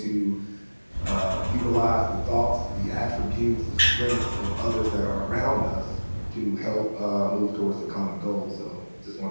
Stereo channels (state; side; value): inverted; both; correlation -1.00